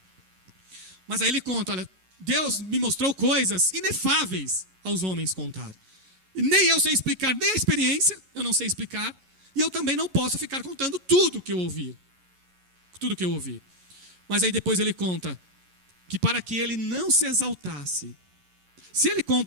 Mas aí ele conta, olha, Deus me mostrou coisas inefáveis aos homens contar. E nem eu sei explicar, nem a experiência, eu não sei explicar. E eu também não posso ficar contando tudo que eu ouvi. Tudo que eu ouvi. Mas aí depois ele conta que para que ele não se exaltasse. Se ele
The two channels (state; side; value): late; left; 11 ms